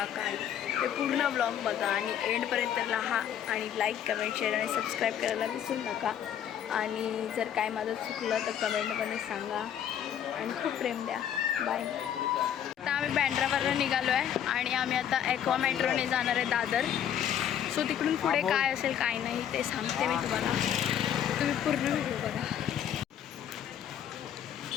काय, ते पूर्ण ब्लॉग बघा आणि एंडपर्यंत राहा. आणि लाईक, कमेंट, शेअर आणि सबस्क्राईब करायला विसरू नका. आणि जर काय माझं चुकलं तर कमेंटमध्ये सांगा आणि खूप प्रेम द्या. बाय. आता आम्ही बँड्रावरनं निघालो आहे आणि आम्ही आता ॲक्वा मेट्रोने जाणार आहे दादर. सो तिकडून पुढे काय असेल काय नाही ते सांगते मी तुम्हाला. तुम्ही पूर्ण व्हिडिओ बघा.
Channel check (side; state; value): right; quieter; 9.8 dB